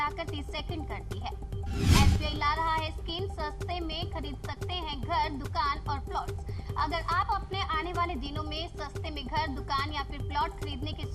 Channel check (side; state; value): both; identical; correlation 1.00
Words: 30 सेकंड कर दी है। SBI ला रहा है स्कीम, सस्ते में खरीद सकते हैं घर, दुकान और प्लॉट्स। अगर आप अपने आने वाले दिनों में सस्ते में घर, दुकान या फिर प्लॉट खरीदने की